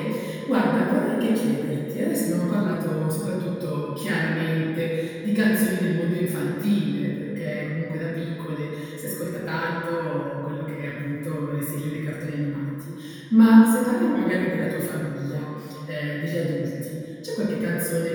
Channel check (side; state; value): both; identical; correlation 1.00